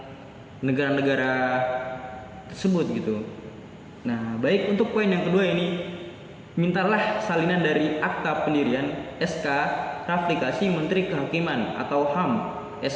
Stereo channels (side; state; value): both; identical; correlation 1.00